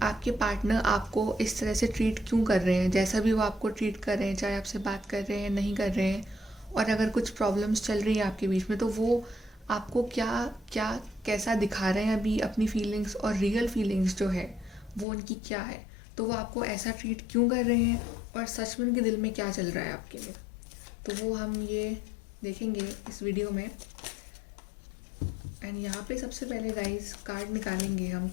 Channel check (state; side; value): drops out; right; at 15.1 s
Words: आपके पार्टनर आपको इस तरह से ट्रीट क्यों कर रहे हैं, जैसा भी वो आपको ट्रीट कर रहे हैं, चाहे आपसे बात कर रहे हैं नहीं कर रहे हैं। और अगर कुछ प्रॉब्लम्स चल रही है आपके बीच में तो वो आपको क्या क्या कैसा दिखा रहे हैं अभी अपनी फीलिंग्स, और रियल फीलिंग्स जो है वो उनकी क्या है। तो वो आपको ऐसा ट्रीट क्यों कर रहे हैं और सच में उनके दिल में क्या चल रहा है आपके लिए। तो वो हम ये देखेंगे इस वीडियो में। एंड यहाँ पे सबसे पहले गाइस कार्ड निकालेंगे, हम